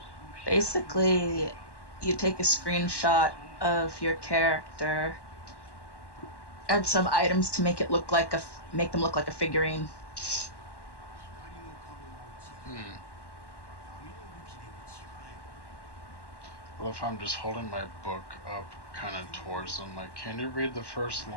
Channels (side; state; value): right; late; 1.1 ms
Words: Basically, you take a screenshot of your character, add some items to make it look like make them look like a figurine. Well, if I'm just holding my book up kind of towards them, like, can you read the first